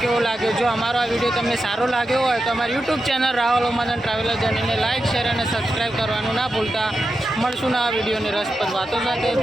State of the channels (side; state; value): both; normal; correlation 0.89